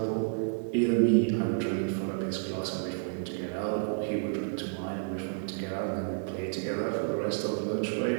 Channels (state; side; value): silent; left; digital silence